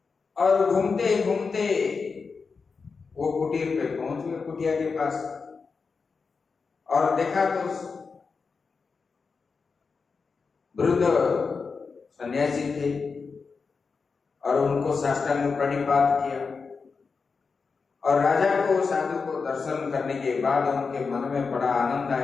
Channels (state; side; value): quieter; right; 4.9 dB